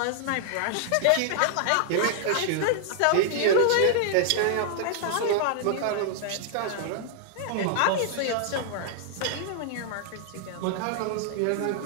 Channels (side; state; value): both; different; correlation -0.01